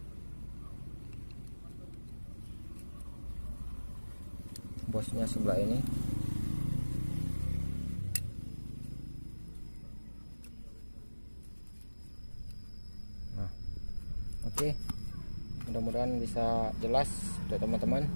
Bosnya sebelah ini. Nah, oke. Mudah-mudahan bisa jelas untuk teman-teman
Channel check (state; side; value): inverted; both; correlation -1.00